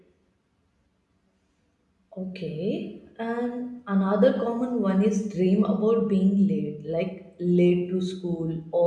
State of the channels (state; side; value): identical; both; correlation 1.00